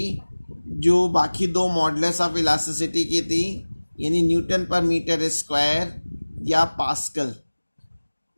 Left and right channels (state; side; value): inverted; both; correlation -1.00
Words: जो बाकी 2 मॉडुलस ऑफ इलास्टिसिटी की थी, यानी न्यूटन पर मीटर स्क्वायर या पास्कल।